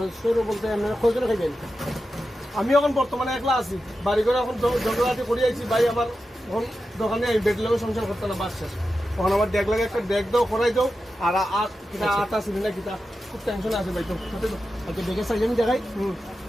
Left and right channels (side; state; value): both; normal; correlation 0.91